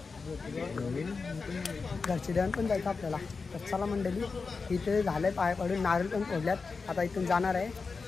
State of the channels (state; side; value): quieter; right; 4.6 dB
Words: घरचे देवान पण जायचं आपल्याला. तर चला मंडळी, इथे झालंय पाय पडून, नारळ पण फोडल्यात. आता इथून जाणार